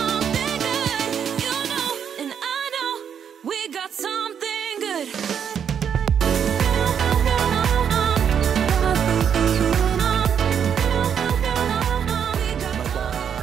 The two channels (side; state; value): left; quieter; 8.0 dB